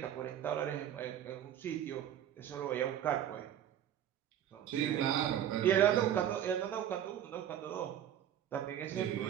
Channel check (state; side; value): quieter; left; 10.4 dB